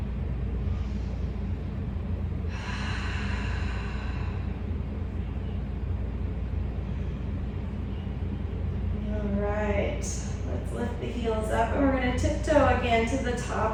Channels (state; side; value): identical; both; correlation 1.00